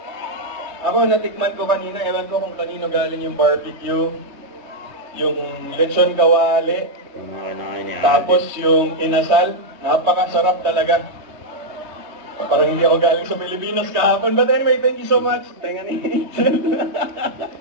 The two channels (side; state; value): left; late; 3.2 ms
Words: Ako, natikman ko kanina. Ewan ko kung kanino galing yung barbecue. Yung lechon kawali. Tapos yung inasal. Napakasarap talaga. Parang hindi ako galing sa Pilipinas kahapon. But anyway, thank you so much. Tenga ni Angel.